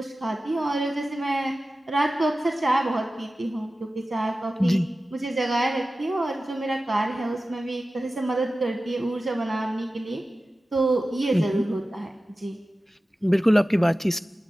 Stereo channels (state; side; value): normal; both; correlation 0.95